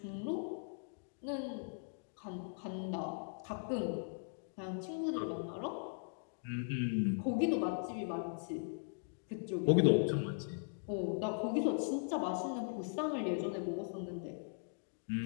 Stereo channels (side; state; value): right; silent; digital silence